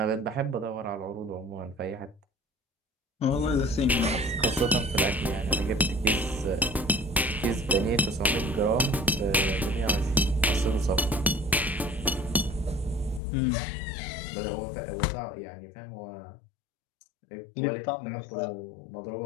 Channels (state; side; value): drops out; right; at 13.2 s